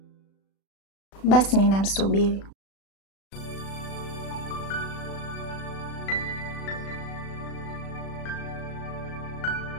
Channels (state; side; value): late; right; 36 ms